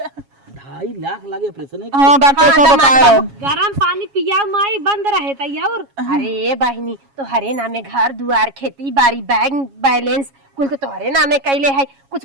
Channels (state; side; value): late; left; 7.3 ms